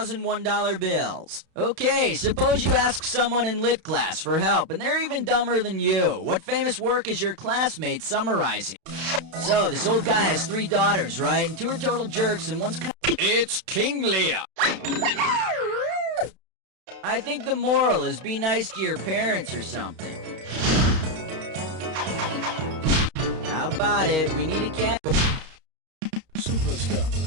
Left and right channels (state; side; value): late; left; 32 ms